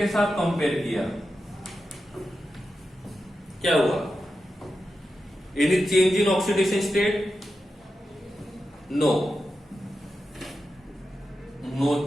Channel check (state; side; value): normal; both; correlation 0.90